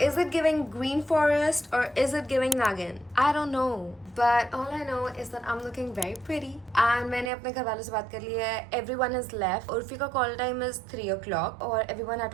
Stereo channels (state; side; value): drops out; left; at 7.3 s